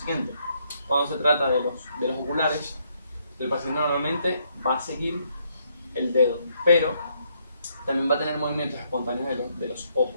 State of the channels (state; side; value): inverted; both; correlation -0.73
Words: Cuando se trata de los oculares, el paciente normalmente va a seguir el dedo, pero también va a tener movimientos espontáneos de los